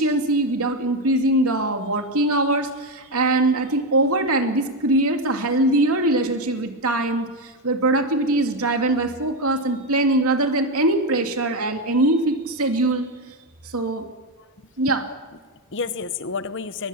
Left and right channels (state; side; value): normal; both; correlation 0.09